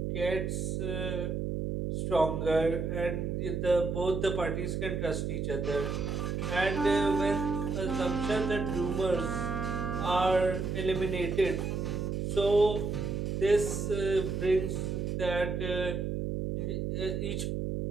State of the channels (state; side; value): noise; right; hum, 1 dB below the sound